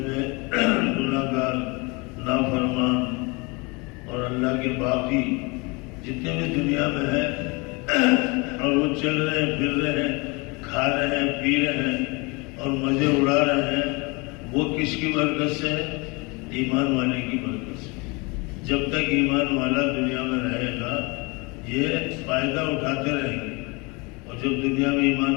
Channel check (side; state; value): right; quieter; 27.8 dB